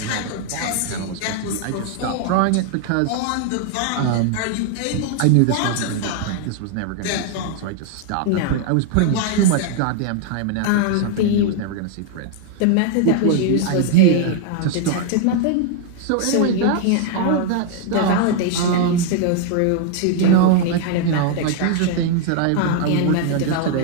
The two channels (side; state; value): both; different; correlation 0.00